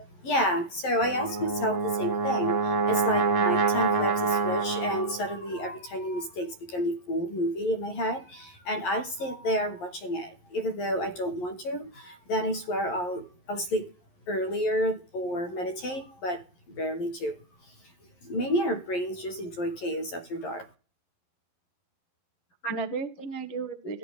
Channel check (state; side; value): late; right; 11 ms